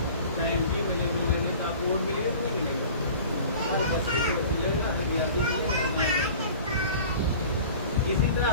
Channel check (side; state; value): both; inverted; correlation -0.43